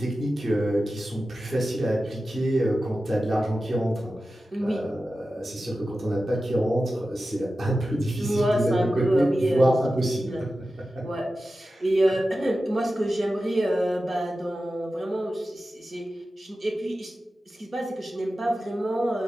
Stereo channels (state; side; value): normal; both; correlation 0.93